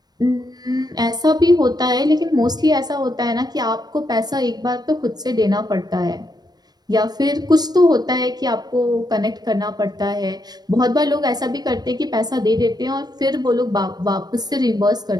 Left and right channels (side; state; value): left; late; 0.19 ms